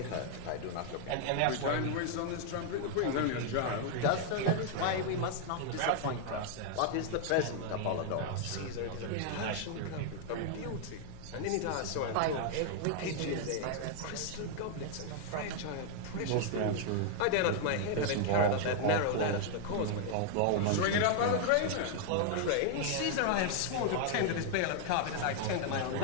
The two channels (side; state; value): both; different; correlation 0.00